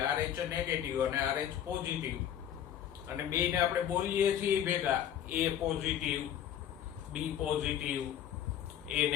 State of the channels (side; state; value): right; quieter; 10.1 dB